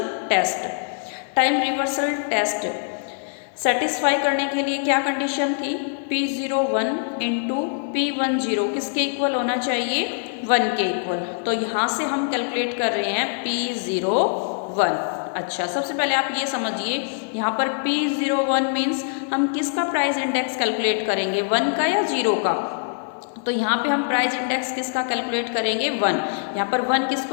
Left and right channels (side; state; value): right; silent; digital silence